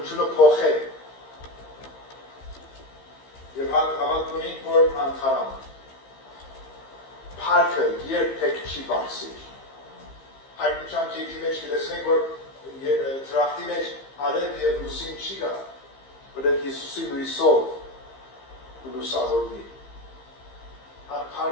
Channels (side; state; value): right; late; 15 ms